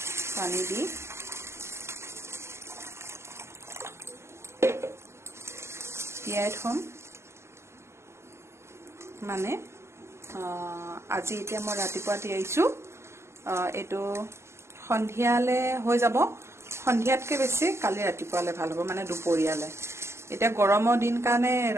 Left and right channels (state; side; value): late; left; 0.13 ms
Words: পানী দি তিয়াই থম মানে আজি এতিয়া মই ৰাতিপুৱা তিয়াইছো এটো সন্ধিয়ালে হৈ যাব সন্ধিয়াতকে বেছি কালি ৰাতিপুৱালে ভাল হ'ব মানে দুপৰীয়ালে এটা গৰমৰ দিন কাৰণে